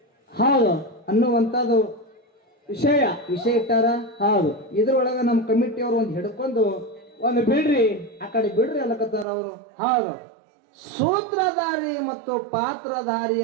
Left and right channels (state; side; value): drops out; left; at 9.2 s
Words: ಹೌದು ಅನ್ನುವಂಥದ್ದು ವಿಷಯ ಇಟ್ಟಾರ. ಹೌದು. ಇದ್ರೊಳಗ ನಮ್ಮ ಕಮಿಟಿಯವರು ಒಂದು ಹಿಡ್ಕೊಂಡು ಒಂದು ಬಿಡ್ರಿ ಆ ಕಡೆ ಬಿಡ್ರಿ ಅಲ್ಲಕತ್ತಾರ ಅವರು. ಹೌದು. ಸೂತ್ರಧಾರಿ ಮತ್ತು ಪಾತ್ರಧಾರಿ